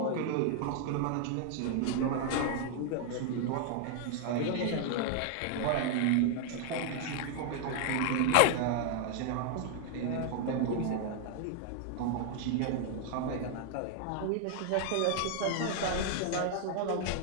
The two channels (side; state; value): both; different; correlation 0.00